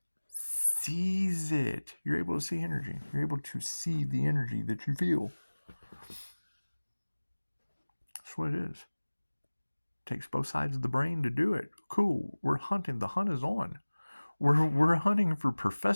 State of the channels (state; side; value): inverted; both; correlation -1.00